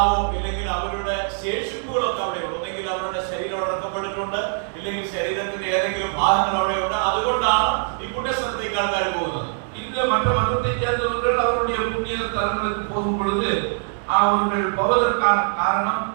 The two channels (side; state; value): left; silent; 64 dB below the other